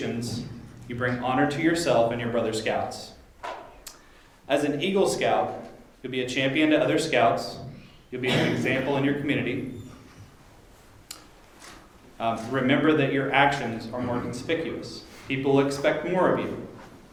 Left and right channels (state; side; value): identical; both; correlation 1.00